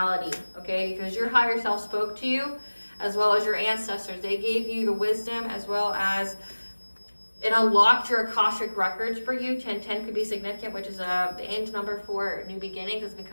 okay? Because your higher self spoke to you, as well as your ancestors. They gave you the wisdom, as well as it unlocked your Akashic records for you. 1010 could be significant, which is the end number for new beginnings. It's been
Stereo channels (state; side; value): inverted; both; correlation -1.00